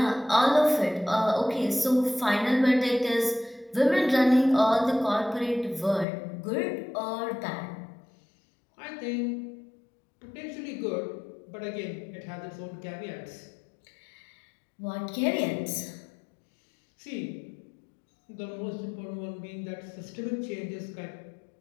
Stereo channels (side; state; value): right; drops out; at 6.1 s